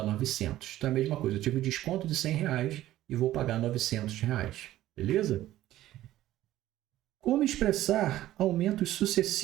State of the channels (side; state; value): left; quieter; 14.3 dB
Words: 900. Então, é a mesma coisa. Eu tive um desconto de R$100 e vou pagar R$900. Beleza? Como expressar aumentos